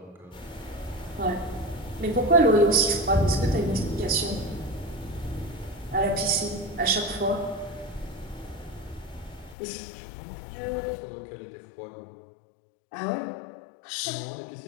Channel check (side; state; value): right; drops out; at 9.6 s